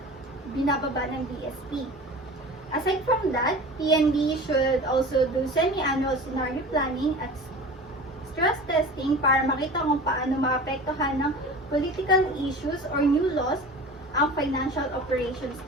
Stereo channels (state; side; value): normal; both; correlation 0.37